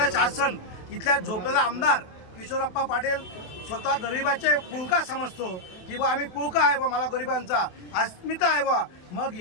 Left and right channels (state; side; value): late; right; 28 ms